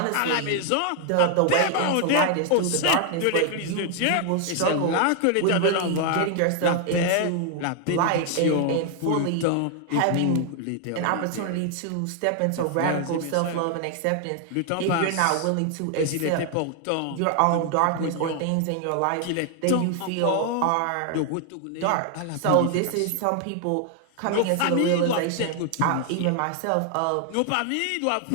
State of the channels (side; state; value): both; different; correlation 0.00